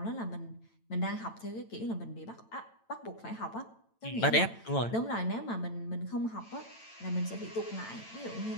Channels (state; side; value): late; right; 8.9 ms